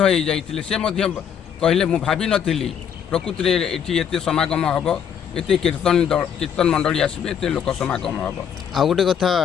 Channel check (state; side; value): quieter; right; 8.2 dB